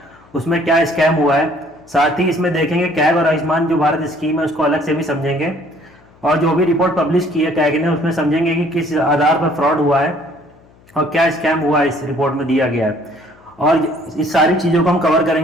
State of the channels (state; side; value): noise; left; hum, 28 dB below the sound